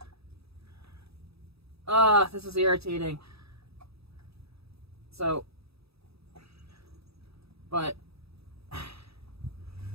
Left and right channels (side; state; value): left; late; 0.77 ms